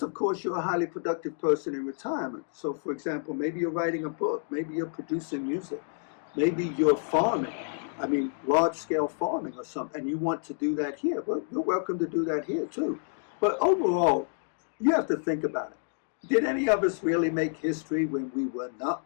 of course, you're a highly productive person in retirement. So, for example, maybe you're writing a book, maybe you're producing music, maybe you're farming. I mean, large-scale farming or something, and you want to do that here. Well, you're welcome to do that here, too. But overall, you have to think about it. Did any of us really make history when we were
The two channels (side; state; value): right; silent; digital silence